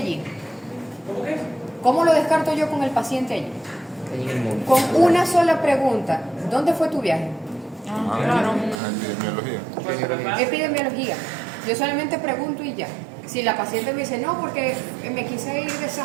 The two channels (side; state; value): left; drops out; at 8.8 s